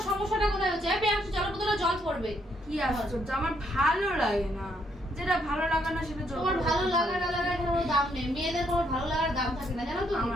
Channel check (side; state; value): both; normal; correlation 0.73